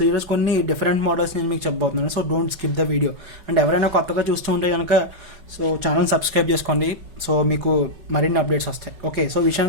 ఈరోజు కొన్ని different models నేను మీకు చెప్పబోతున్నాను. So don't skip the video. And ఎవరైనా కొత్తగా చూస్తూ ఉంటే కనుక సో ఛానల్ సబ్స్క్రైబ్ చేసుకోండి. సో మీకు మరిన్ని అప్డేట్స్ వస్తాయి. ఓకే, సో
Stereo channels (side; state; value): left; late; 5.3 ms